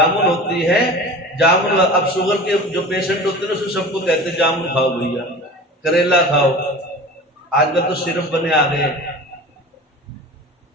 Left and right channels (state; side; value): normal; both; correlation 0.37